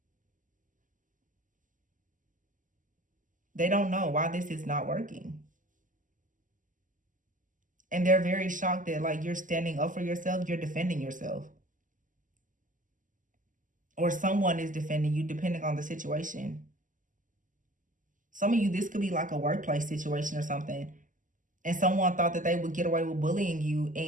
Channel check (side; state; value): left; late; 0.38 ms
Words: They don't know why this is not working. And they're very shocked that, like, you're standing up for yourself, you're defending yourself. Or someone is defending you, depending on the situation. Some of you, this could be like a workplace situation or something. And someone thought that they would get away with bullying you,